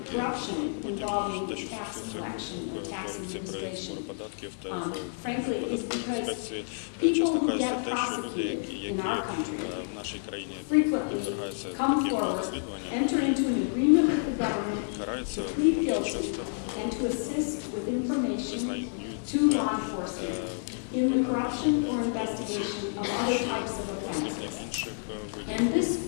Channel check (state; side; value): silent; right; digital silence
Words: corruption involving tax collection or tax administration, frankly, is because people who get prosecuted in our country frequently come forward, enter into an agreement with the government to plead guilty and to assist with information to law enforcement in the corruption or investigation of other types of offenses. And this